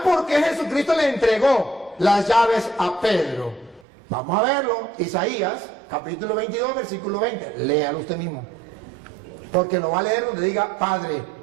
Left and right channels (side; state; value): left; drops out; at 3.9 s